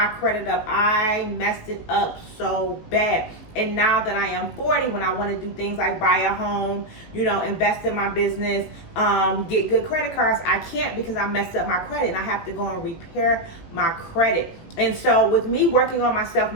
credit up. I messed it up so bad. And now that I am 40, when I want to do things like buy a home, you know, invest in my business, get good credit cards, I can't because I messed up my credit and I have to go and repair my credit. And so with me working on myself,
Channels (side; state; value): right; late; 18 ms